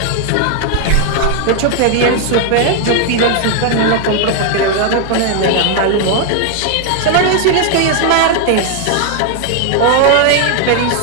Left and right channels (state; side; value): different; both; correlation 0.00